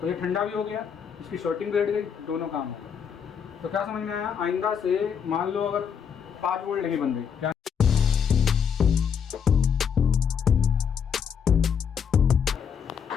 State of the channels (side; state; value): right; quieter; 7.2 dB